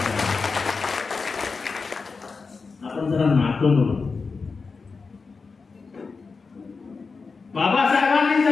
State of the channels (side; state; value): right; quieter; 4.6 dB